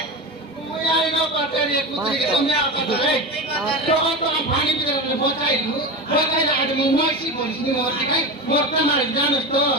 মুই আই না পাটারি একুত্রি কে তুমি আর পাটারে তখন তো পানি দিলে বচাইলু বচাইলা আজ মুই মইস্তি বলিনি মরতে কাই মরতে মারি জানোস তো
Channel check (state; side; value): normal; both; correlation 0.24